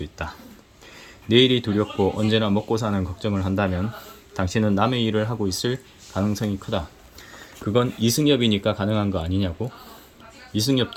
있다. 내일이 두렵고 언제나 먹고 사는 걱정을 한다면 당신은 남의 일을 하고 있을 가능성이 크다. 그건 이승엽이니까 가능한 거 아니냐고?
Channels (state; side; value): identical; both; correlation 1.00